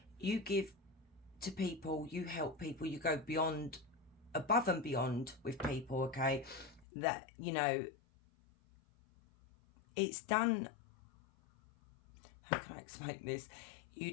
you give to people, you help people, you go beyond, above and beyond with people. Okay, that, you know, it's done. How can I explain this? You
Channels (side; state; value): right; drops out; at 6.9 s